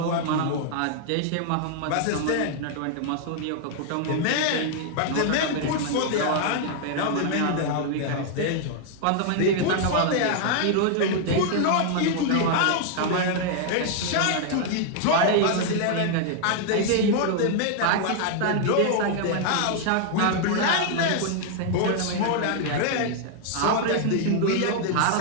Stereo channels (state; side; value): different; both; correlation 0.00